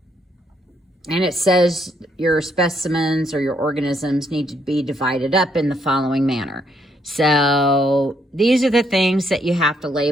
And it says your specimens or your organisms need to be divided up in the following manner. So these are the things that you have to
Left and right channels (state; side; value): normal; both; correlation 0.73